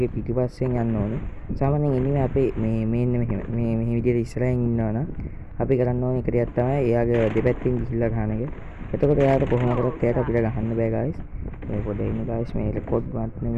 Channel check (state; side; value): identical; both; correlation 1.00